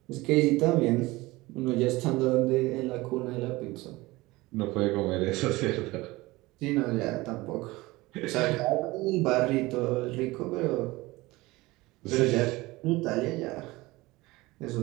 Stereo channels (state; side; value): quieter; left; 20.7 dB